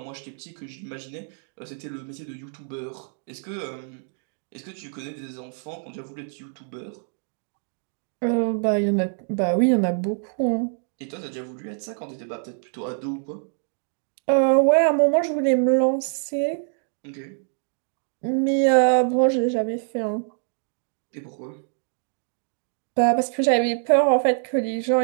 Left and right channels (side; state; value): left; silent; 62 dB below the other